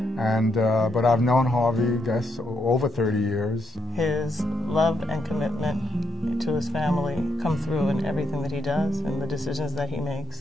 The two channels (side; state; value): both; normal; correlation 0.77